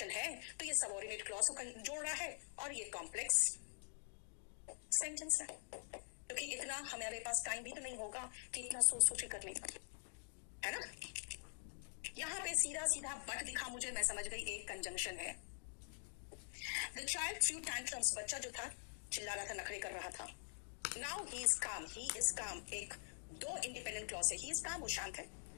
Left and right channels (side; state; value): right; silent; digital silence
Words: है तो ये सबऑर्डिनेट क्लॉज को जोड़ रहा है, और ये कॉम्प्लेक्स सेंटेंस है, क्योंकि इतना हमारे पास टाइम भी तो नहीं होगा कि इतना सोच सोच करने का, है ना। यहाँ पे सीधा सीधा बट दिखा मुझे, मैं समझ गई एक कंजंक्शन है। द चाइल्ड थ्रू टैंट्रम्स, बच्चा जो था चिल्ला रहा था, नखरे कर रहा था। नाउ ही इज काम, ही इज काम, एक 2 इंडिपेंडेंट क्लॉज है, ही इज काम, वो शांत है।